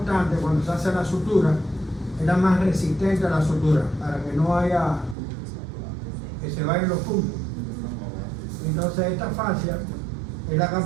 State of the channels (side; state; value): left; drops out; at 5.2 s